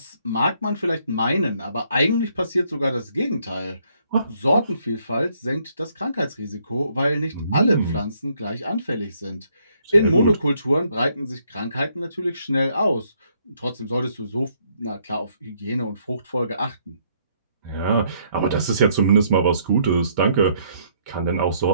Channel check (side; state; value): both; inverted; correlation -0.69